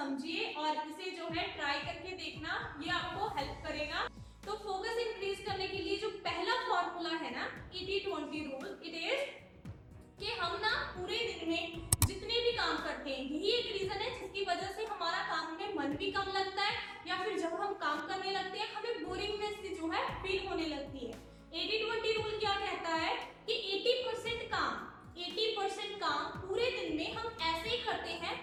और इसे जो है ट्राई करके देखना, ये आपको हेल्प करेगा। तो फोकस इंक्रीज करने के लिए जो पहला फॉर्मूला है ना 80-20 रूल, इट इज कि हम ना पूरे दिन में जितने भी काम करते हैं, यही एक रीजन है जिसकी वजह से हमारा काम में मन भी कम लगता है, या फिर जब हम काम करने लगते हैं हमें बोरिंगनेस सी जो है फील होने लगती है। 80-20 रूल क्या कहता है कि 80% काम पूरे दिन में हम ऐसे ही करते हैं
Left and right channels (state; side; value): identical; both; correlation 1.00